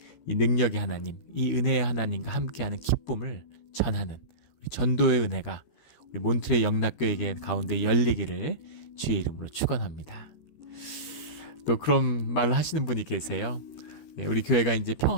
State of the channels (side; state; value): right; late; 13 ms